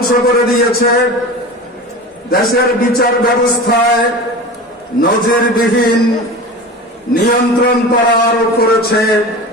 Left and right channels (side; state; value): both; normal; correlation 0.32